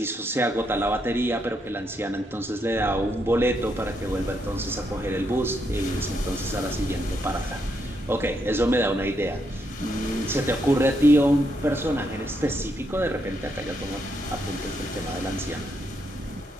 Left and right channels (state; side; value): normal; both; correlation 0.78